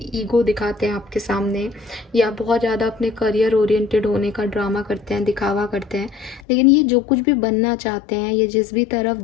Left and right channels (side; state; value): right; drops out; at 6.5 s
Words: ईगो दिखाते हैं आपके सामने, या बहुत ज़्यादा अपने करियर ओरिएंटेड होने का ड्रामा करते हैं, दिखावा करते हैं, लेकिन ये जो कुछ भी बनना चाहते हैं, ये जिस भी तरफ